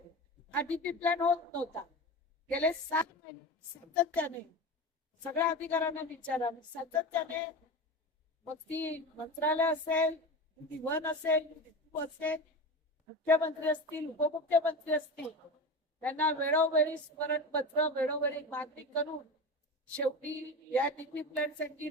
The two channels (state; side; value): normal; both; correlation 0.27